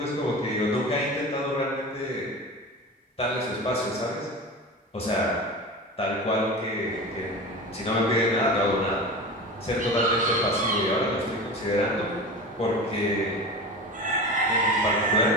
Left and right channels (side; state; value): both; normal; correlation 0.30